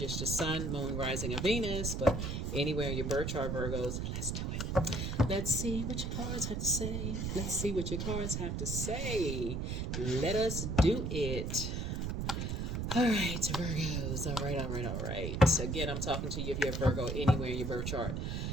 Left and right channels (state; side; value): noise; right; rumble, 2 dB below the sound